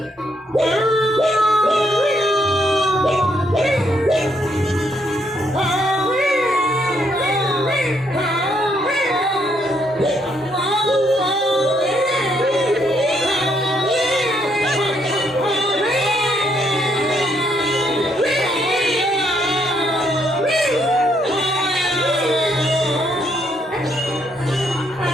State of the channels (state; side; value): normal; both; correlation 0.73